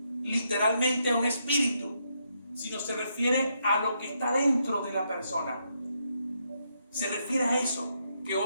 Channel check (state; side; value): inverted; both; correlation -0.78